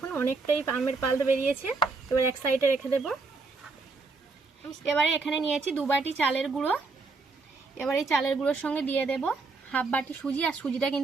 অনেকটাই আমের পাল্প বেরিয়েছে। এবার এক সাইডে রেখে দেব। এবারে এখানে নিয়েছি 2 বাটি চালের গুঁড়ো। এবার এই চালের গুঁড়োর সঙ্গে দিয়ে দেব হাফ বাটি সুজি। আর সুজিটা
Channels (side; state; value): left; quieter; 4.0 dB